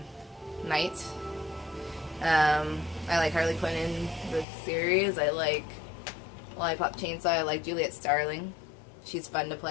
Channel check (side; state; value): right; drops out; at 4.5 s